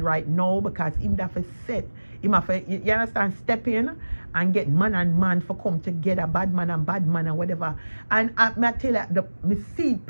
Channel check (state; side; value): inverted; both; correlation -1.00